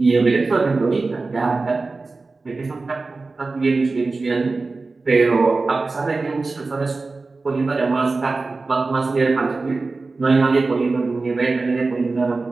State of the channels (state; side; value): quieter; left; 3.7 dB